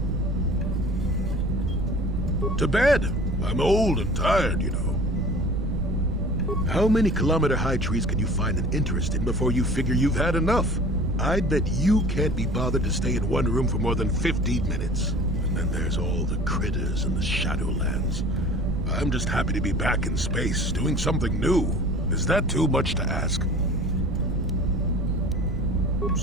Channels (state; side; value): noise; right; rumble, 3 dB below the sound